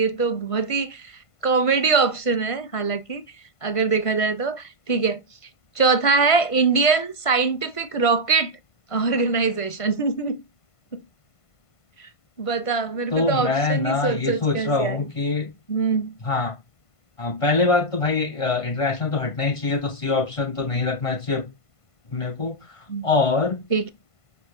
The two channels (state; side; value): late; right; 1.5 ms